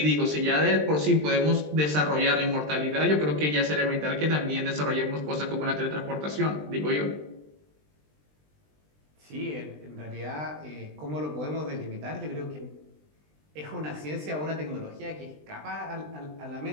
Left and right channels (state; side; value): late; left; 20 ms